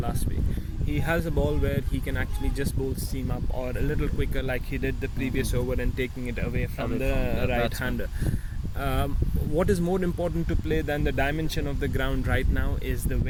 week. He has a ball where he can actually just bowl seam up or a little quicker, like he did the previous over, and taking it away from the right-hander. What is more important to play than the dimension of the ground right now is the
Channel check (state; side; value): identical; both; correlation 1.00